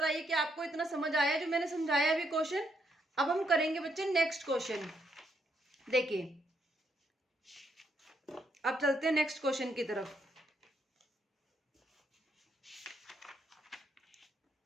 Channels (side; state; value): both; normal; correlation 0.76